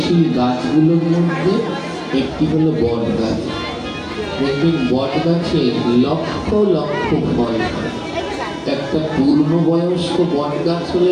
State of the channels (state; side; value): identical; both; correlation 1.00